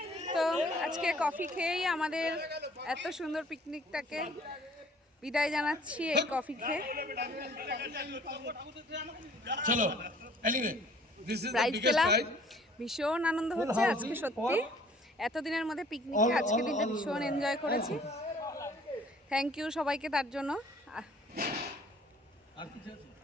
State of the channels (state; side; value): normal; both; correlation 0.55